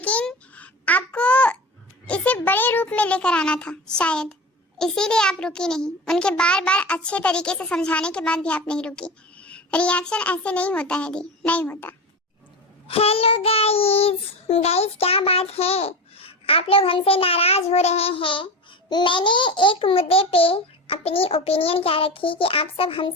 आपको इसे बड़े रूप में लेकर आना था शायद, इसीलिए आप रुकी नहीं। उनके बार बार अच्छे तरीके से समझाने के बाद भी आप नहीं रुकी। रिएक्शन ऐसे नहीं होता है दी, नहीं होता। हेलो गाइस, क्या बात है? आप लोग हमसे नाराज हो रहे हैं। मैंने एक मुद्दे पे अपनी ओपिनियन क्या रखी कि आप सब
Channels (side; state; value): both; normal; correlation 0.27